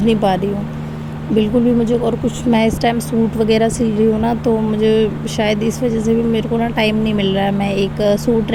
नहीं पा रही हूँ बिल्कुल भी मुझे। और कुछ मैं इस टाइम सूट वगैरह सिल रही हूँ ना, तो मुझे शायद इस वजह से भी मेरे को ना टाइम नहीं मिल रहा है। मैं एक सूट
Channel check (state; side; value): identical; both; correlation 1.00